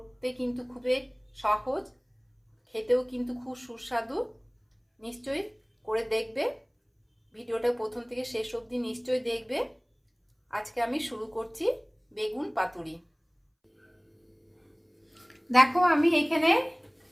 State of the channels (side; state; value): both; identical; correlation 1.00